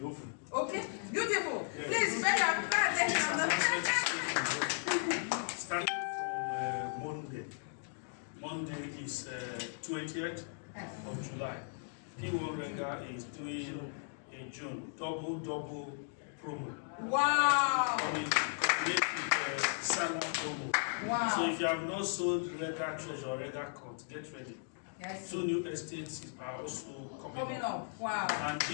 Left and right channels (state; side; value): silent; right; digital silence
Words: oven. Okay, beautiful. Yes. Please, pay your Starting from Monday. Monday is 20th of July. P1 Rega is doing in June double promo. Wow. Salmon promo. Wow. So if you have not sold Rega Treasure or Rega Court, get ready. Yes. 2 new estates are also coming up. Wow. And